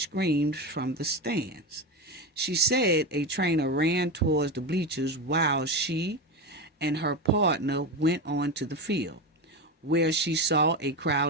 screams from the stands. She said a trainer ran towards the bleachers while she and her partner went on to the field, where she saw a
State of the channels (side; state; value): both; normal; correlation 0.19